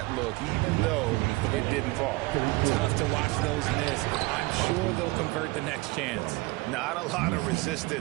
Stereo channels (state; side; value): quieter; left; 22.8 dB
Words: look, even though it didn't fall. Tough to watch those miss. I'm sure they'll convert the next chance. Not a lot of